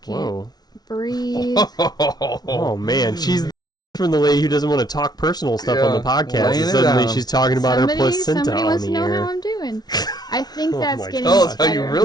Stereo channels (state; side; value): late; right; 0.19 ms